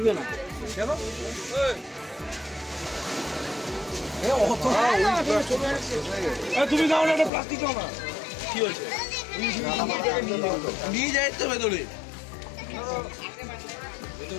না কেন তুমি দাও না প্লাস্টিক দাও না কি হয়েছে নিয়ে যাই তো ভেতরে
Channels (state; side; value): drops out; right; at 7.3 s